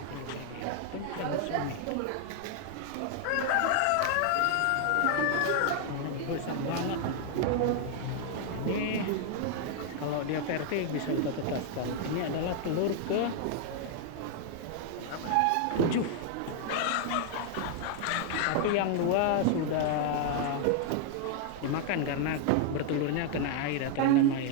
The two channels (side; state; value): both; different; correlation 0.00